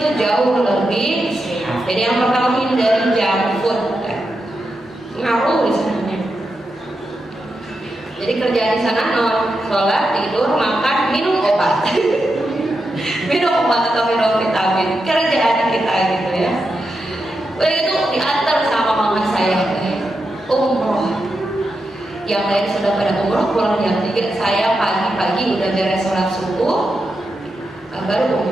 jauh lebih sehat. Jadi yang pertama hindari junk food, ngaruh di sana. Jadi kerjaan di sana sholat, tidur, makan, minum obat, minum obat atau minum vitamin. Kerjaan kita gitu ya. Begitu diantar sama mama saya umroh. Yang lain sudah pada umroh pulang jam 3, saya pagi-pagi udah beres sholat subuh, baru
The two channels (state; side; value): normal; both; correlation 0.87